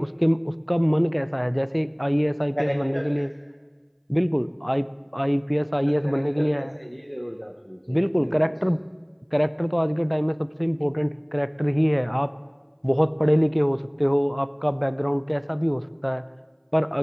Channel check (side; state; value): both; identical; correlation 1.00